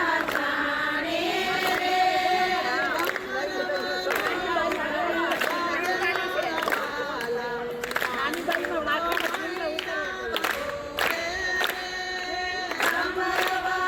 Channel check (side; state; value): both; identical; correlation 1.00